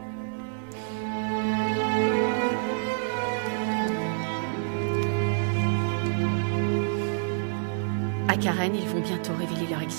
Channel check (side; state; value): left; silent; 60 dB below the other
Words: À Karen, ils vont bientôt révéler leur